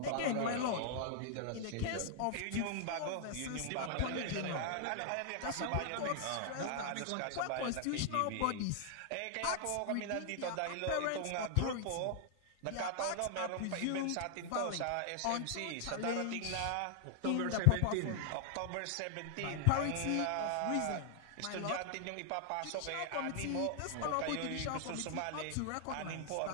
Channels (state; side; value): different; both; correlation 0.00